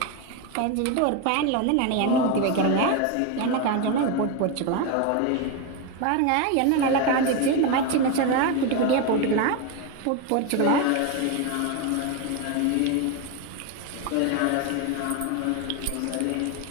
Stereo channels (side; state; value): both; different; correlation 0.02